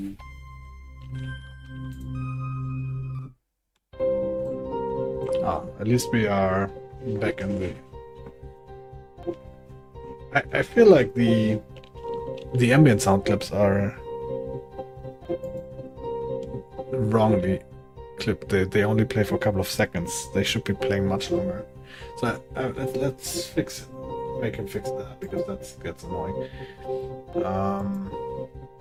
Oh, at least we are back in the. I feel like the ambient sound clips are wrongly clipped. They only play for a couple of seconds. They should be playing much longer. So let's fix it. Make him fix that because that gets annoying.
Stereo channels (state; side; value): identical; both; correlation 1.00